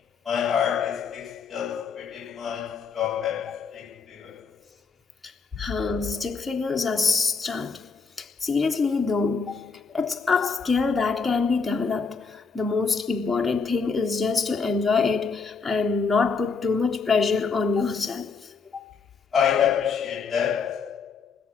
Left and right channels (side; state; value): right; quieter; 5.1 dB